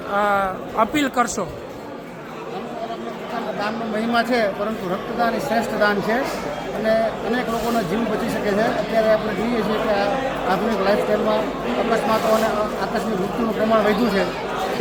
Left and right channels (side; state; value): both; identical; correlation 1.00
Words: અપીલ કરશો? દાનનો મહિમા છે, પરંતુ રક્તદાન એ શ્રેષ્ઠ દાન છે અને અનેક લોકોનો જીવ બચી શકે છે. અત્યારે આપણે જોઈએ છીએ કે આધુનિક લાઈફસ્ટાઈલમાં અકસ્માતો અને આકસ્મિક મૃત્યુનું પ્રમાણ વધ્યું છે.